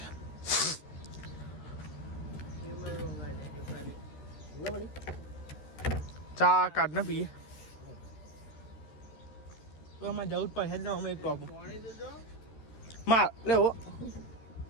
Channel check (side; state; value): right; late; 13 ms